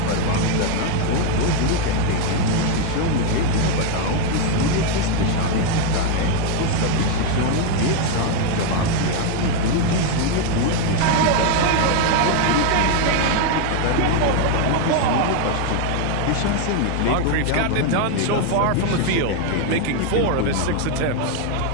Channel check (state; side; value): different; both; correlation 0.01